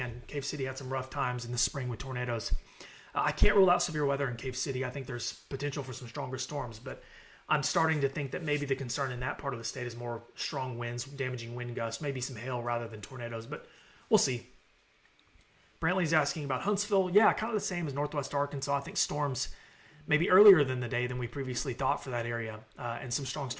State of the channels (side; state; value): both; identical; correlation 1.00